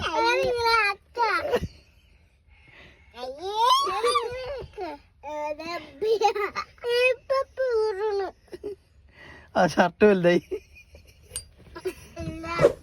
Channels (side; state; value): both; identical; correlation 1.00